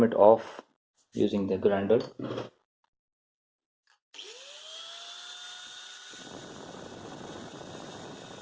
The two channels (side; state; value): both; identical; correlation 1.00